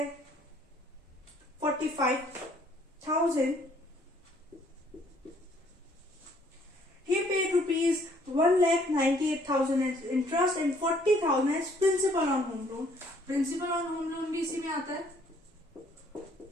45,000। He paid rupees 1,98,000 as interest and 40,000 as principal on home loan। Principal on home loan भी इसी में आता है।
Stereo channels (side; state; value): both; normal; correlation 0.62